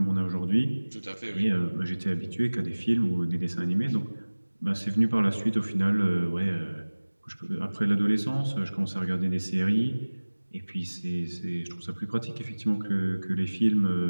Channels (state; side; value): inverted; both; correlation -1.00